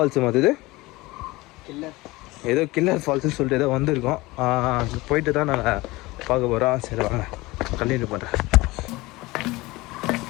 மாதிரி ஏதோ கில்லர் ஃபால்ஸுன்னு சொல்லிட்டு ஏதோ வந்திருக்கோம். போயிட்டு தான் நாங்கள் பார்க்க போகிறோம். சரி வாங்க கண்டினியூ பண்ணுறேன்.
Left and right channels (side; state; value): right; quieter; 21.1 dB